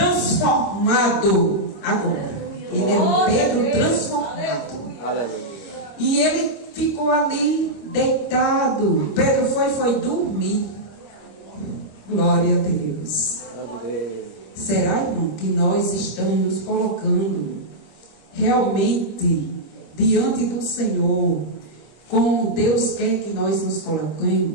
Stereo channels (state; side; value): late; right; 25 ms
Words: agora. Ele era um Pedro transformado. Aleluia. E ele ficou ali deitado. Pedro foi dormir. Glória a Deus. Grande Deus. Será, irmão, que nós estamos nos colocando realmente diante do Senhor, como Deus quer que nós nos